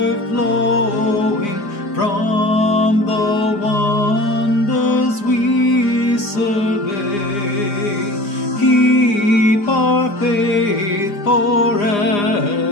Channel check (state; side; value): late; right; 4.9 ms